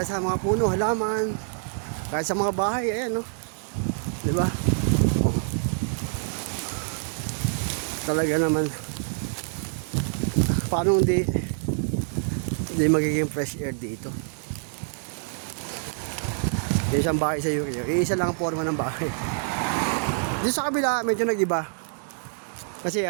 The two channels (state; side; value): silent; left; digital silence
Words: sa mga puno, halaman. Kahit sa mga bahay, ayan no. 'Di ba? Oh. Talaga naman. Paano hindi magiging fresh air dito? Isang bahay sa UK, isa lang ang forma ng bahay. Dito sa kabila, medyo nag-iba. Kasi